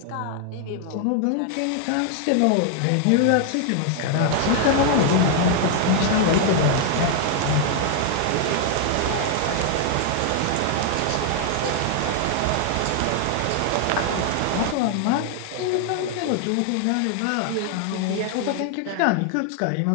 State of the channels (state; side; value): different; both; correlation 0.00